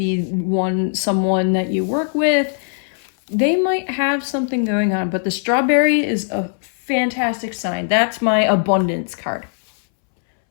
someone that you work with. They might have something going on, but the strawberry is a fantastic sign. That's my abundance card.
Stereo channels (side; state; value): right; silent; 66 dB below the other